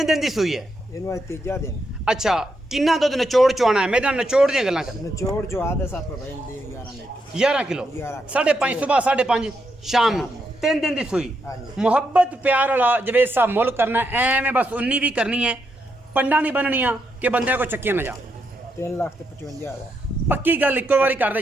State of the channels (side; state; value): both; normal; correlation 0.81